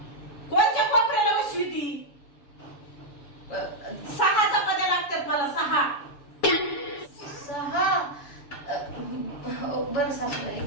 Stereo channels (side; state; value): right; late; 7.0 ms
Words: कोणत्या कोपऱ्याला बसवी ती? 6 चपात्या लागतात मला, 6. 6? बरं सासूबाई,